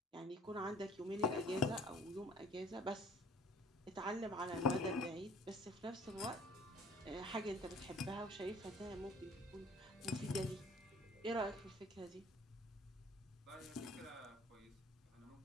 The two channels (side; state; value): both; normal; correlation 0.53